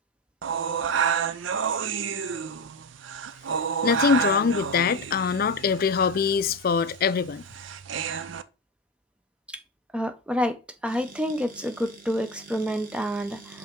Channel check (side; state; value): both; normal; correlation 0.20